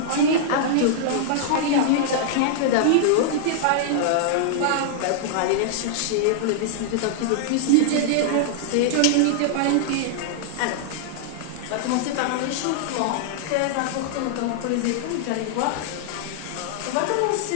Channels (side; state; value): both; different; correlation -0.01